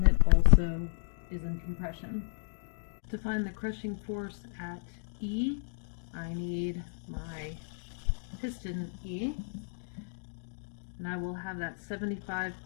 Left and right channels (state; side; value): silent; right; digital silence